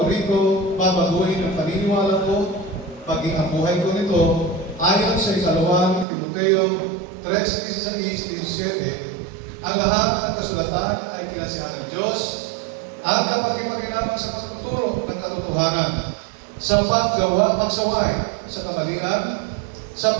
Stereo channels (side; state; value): left; drops out; at 6.1 s